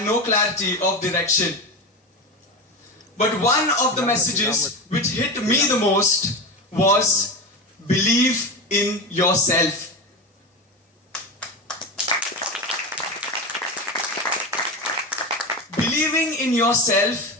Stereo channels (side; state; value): both; normal; correlation 0.21